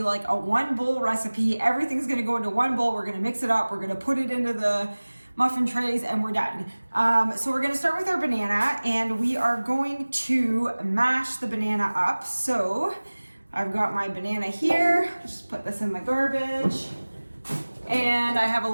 like a one bowl recipe. Everything's going to go into one bowl. We're going to mix it up. We're going to put it into the muffin trays and we're done. So we're gonna start with our banana, and we are going to mash the banana up. So I've got my banana here, just put this in the garbage. And I have a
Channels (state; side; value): inverted; both; correlation -1.00